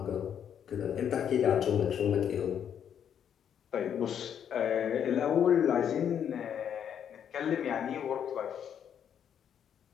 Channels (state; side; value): quieter; right; 8.7 dB